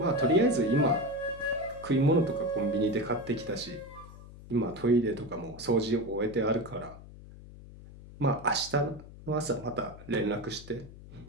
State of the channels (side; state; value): left; noise; hum, 17 dB below the sound